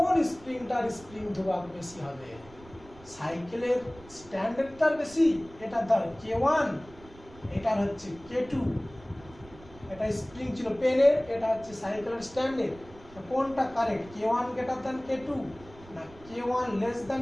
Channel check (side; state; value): right; noise; rumble, 21 dB below the sound